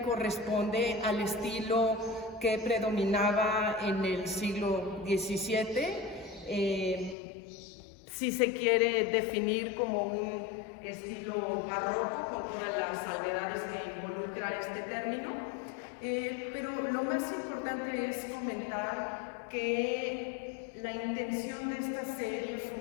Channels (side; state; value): right; drops out; at 7.2 s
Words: corresponde al estilo que predominaba en el siglo XVII. Si se quiere definir como un estilo barroco, con todas las salvedades que involucra este término, pero lo más importante es comentar que la intención de esta serie